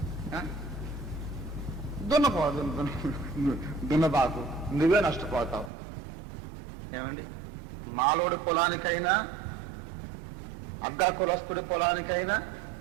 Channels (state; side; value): drops out; left; at 5.7 s